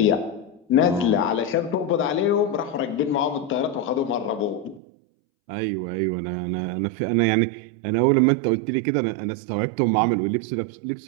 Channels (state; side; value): drops out; left; at 4.8 s